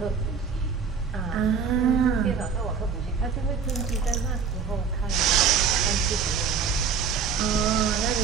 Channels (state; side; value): quieter; left; 6.0 dB